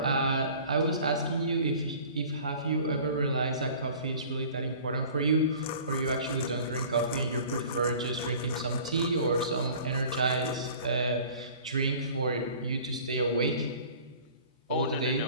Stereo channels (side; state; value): both; inverted; correlation -0.47